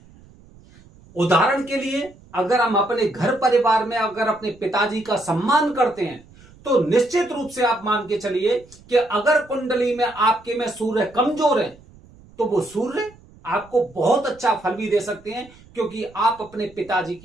उदाहरण के लिए, अगर हम अपने घर परिवार में अगर अपने पिताजी का सम्मान करते हैं तो निश्चित रूप से आप मान के चलिए कि अगर कुंडली में आपके में सूर्य कमजोर है तो वो सूर्य आपको बहुत अच्छा फल भी दे सकते हैं, क्योंकि आप अपने पिताजी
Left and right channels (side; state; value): right; noise; rumble, 25 dB below the sound